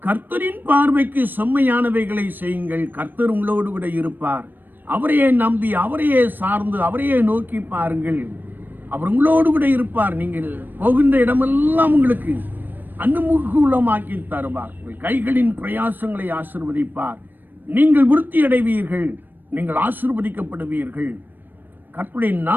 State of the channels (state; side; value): late; left; 0.092 ms